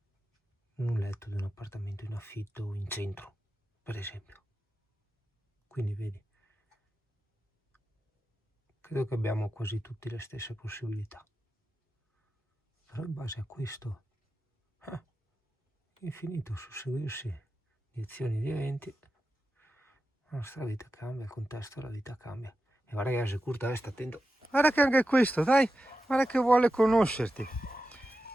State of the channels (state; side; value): normal; both; correlation 0.92